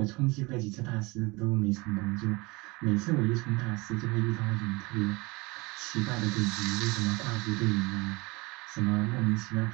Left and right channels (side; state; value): left; quieter; 24.8 dB